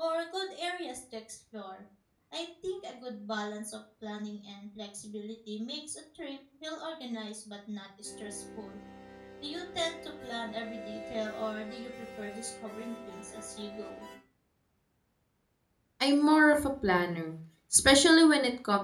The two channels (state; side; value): identical; both; correlation 1.00